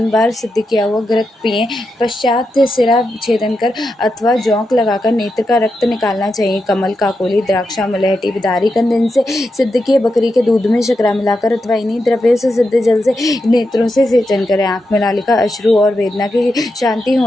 बार सिद्ध किया हुआ घृत पिएं। पश्चात सिरा छेदन कर अथवा जौंक लगाकर नेत्र का रक्त निकालना चाहिए। कमल, काकोली, द्राक्षा, मलहटी, बिदारी कंद इनसे सिद्ध किए बकरी के दूध में शकरा मिलाकर अथवा इन्हीं द्रव्यों से सिद्ध जल से नेत्रों से सेचन करें। आंख में लालिका, अश्रु और वेदना की शांति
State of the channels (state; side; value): normal; both; correlation 0.87